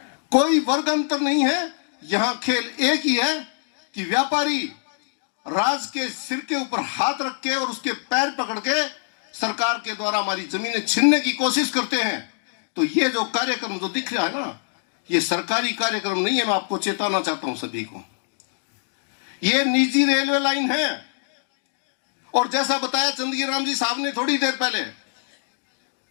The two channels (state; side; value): silent; right; digital silence